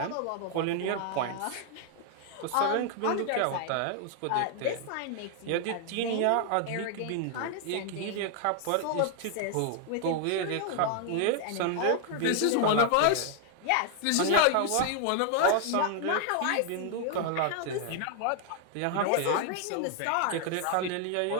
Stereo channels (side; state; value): both; different; correlation 0.00